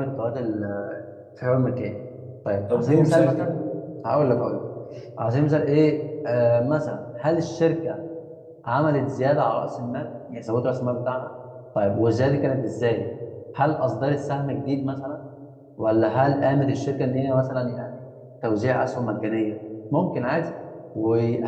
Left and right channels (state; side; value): identical; both; correlation 1.00